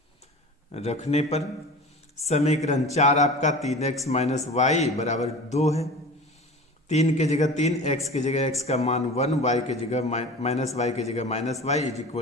पर समीकरण 4 आपका 3x माइनस y बराबर 2 है, 3 के जगह 3, x के जगह x का मान 1, y के जगह माइनस y के जगह minus y is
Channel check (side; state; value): both; normal; correlation 0.36